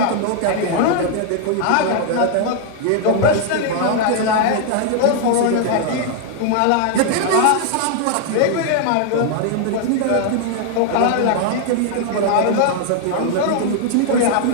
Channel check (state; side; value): different; both; correlation 0.00